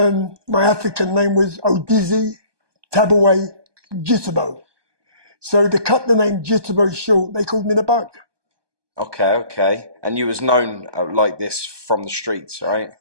my African name was Odizzy Tabawe Jituboh. So to cut the name Jituboh short, they called me The Bug. Okay. And you was known like this from the streets, right?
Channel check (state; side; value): late; left; 1.2 ms